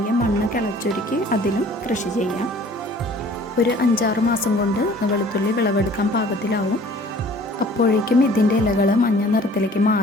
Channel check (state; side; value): normal; both; correlation 0.52